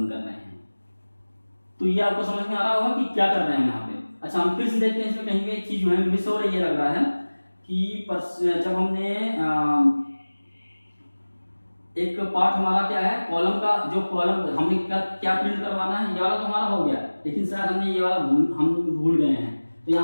कर रहे हैं। तो ये आपको समझ में आ रहा होगा कि क्या कर रहे हैं यहाँ पे। अच्छा, हम फिर से देखते हैं इसमें कहीं पे एक चीज जो है मिस हो रही है, लग रहा है कि जब हमने एक पार्ट हमारा क्या है, कॉलम का जो कॉलम हमने क्या प्रिंट करवाना है, ये वाला तो हमारा हो गया, लेकिन शायद हमने ये वाला हम भूल गए हैं। तो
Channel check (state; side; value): inverted; both; correlation -1.00